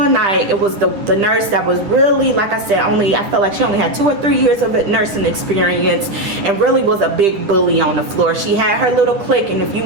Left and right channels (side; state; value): left; late; 10 ms